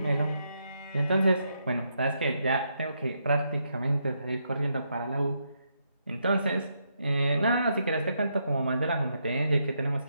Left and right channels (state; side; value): inverted; both; correlation -0.79